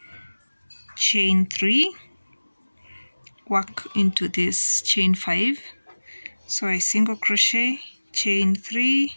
chain 3, work into this chain 5. So I single crochet, chain 3,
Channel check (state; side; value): inverted; both; correlation -1.00